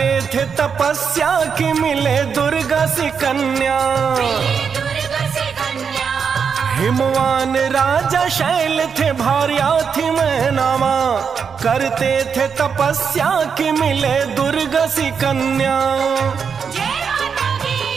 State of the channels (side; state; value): left; quieter; 6.4 dB